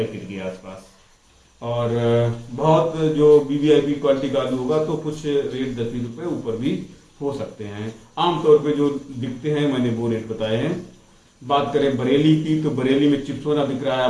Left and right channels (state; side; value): identical; both; correlation 1.00